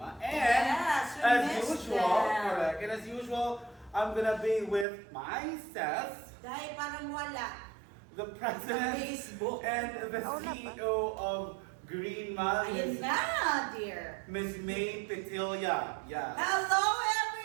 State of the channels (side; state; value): left; drops out; at 4.9 s